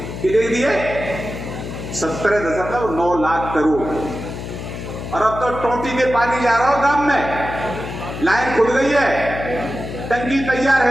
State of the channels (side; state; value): left; noise; hum, 8 dB below the sound